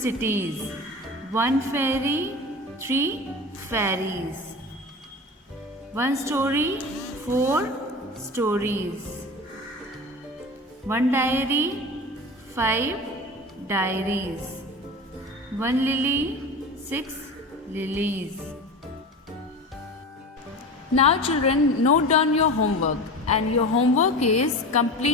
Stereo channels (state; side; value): normal; both; correlation 0.31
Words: 1 fairy, 3 fairies. 1 story, 4 stories. 1 diary, 5 diaries. 1 lily, 6 lilies. Now children, note down your homework, and your homework is